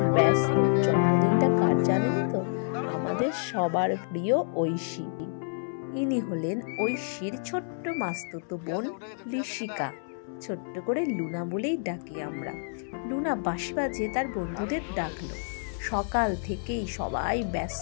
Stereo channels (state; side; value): silent; right; 59 dB below the other